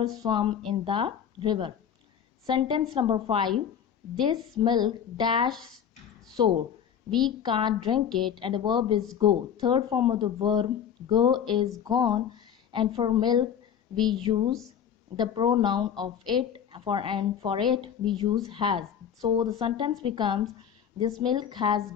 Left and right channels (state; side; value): quieter; right; 8.5 dB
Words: swum in the river. Sentence number 5, this milk dash sour, we can't drink it, and the verb is go. Third form of the verb go is gone, and for milk we use the pronoun of it, and for it we use has. So the sentence becomes this milk has